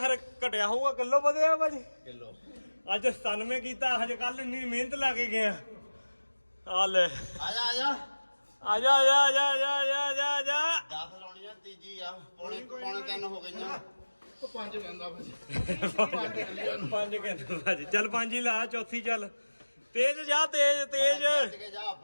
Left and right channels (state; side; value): inverted; both; correlation -1.00